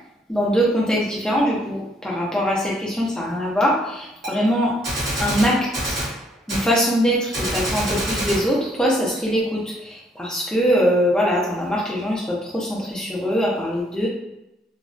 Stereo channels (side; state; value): both; normal; correlation 0.67